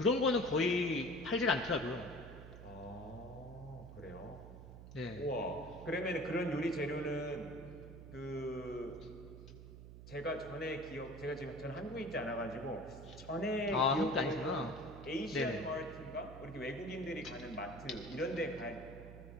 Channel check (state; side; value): noise; right; hum, 13 dB below the sound